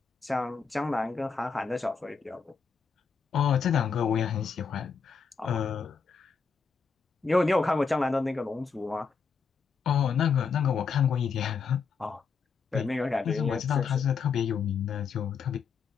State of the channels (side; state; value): right; quieter; 5.5 dB